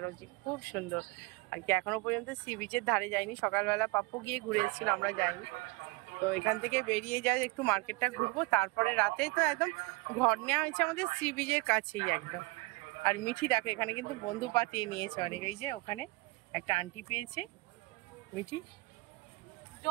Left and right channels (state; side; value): quieter; left; 24.9 dB